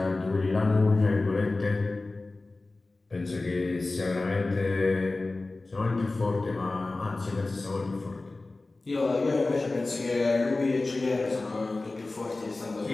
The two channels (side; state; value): right; quieter; 3.2 dB